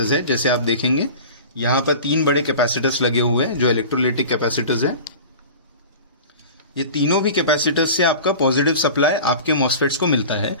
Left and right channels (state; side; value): inverted; both; correlation -0.36